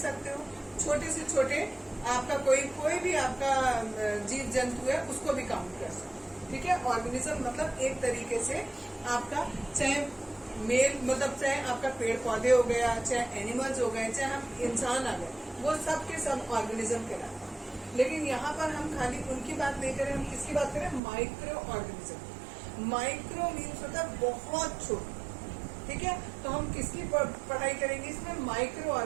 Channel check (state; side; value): drops out; left; at 21.0 s